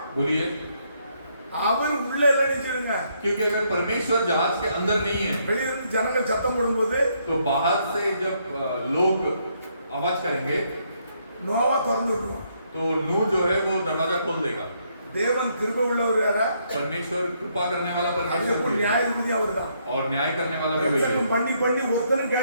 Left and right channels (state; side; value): inverted; both; correlation -0.73